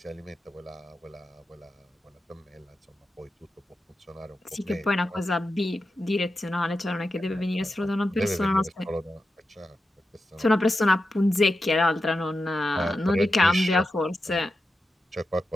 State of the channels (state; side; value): normal; both; correlation 0.90